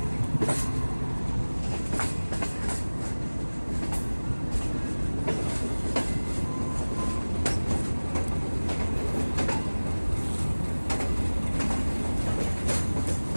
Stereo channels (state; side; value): inverted; both; correlation -1.00